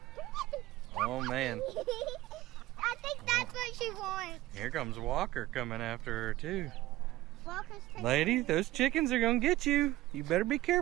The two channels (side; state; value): left; quieter; 16.8 dB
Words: Oh, man. I think that's what she wants. Here comes Walker coming after her, too. Walker's taking Lady, those chickens are gonna get you. You better be